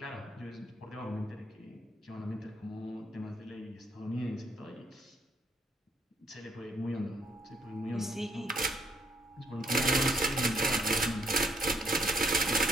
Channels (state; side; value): normal; both; correlation 0.69